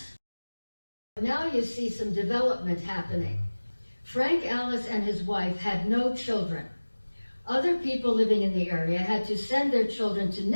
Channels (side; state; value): both; inverted; correlation -1.00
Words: Now you see some development happening. Frank Allis and his wife had no children. Other people living in the area had to send their children to